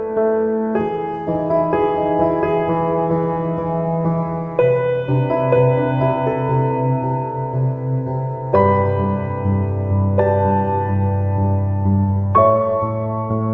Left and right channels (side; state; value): both; identical; correlation 1.00